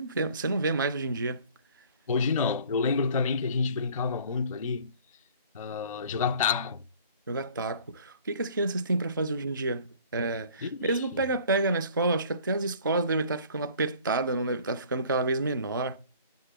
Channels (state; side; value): inverted; both; correlation -0.51